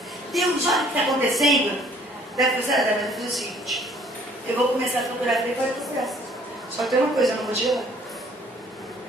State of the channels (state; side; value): normal; both; correlation 0.58